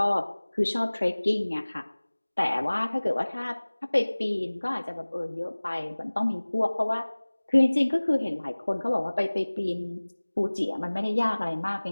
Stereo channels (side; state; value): both; inverted; correlation -1.00